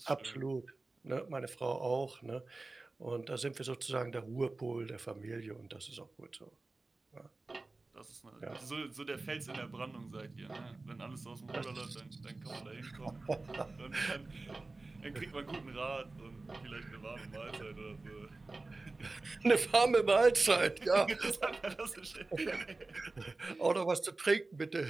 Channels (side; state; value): left; quieter; 3.3 dB